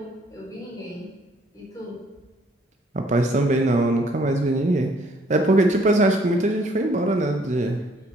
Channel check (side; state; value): both; normal; correlation 0.63